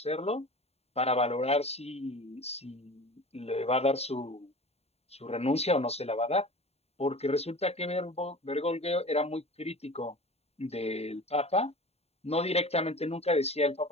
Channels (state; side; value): late; right; 0.30 ms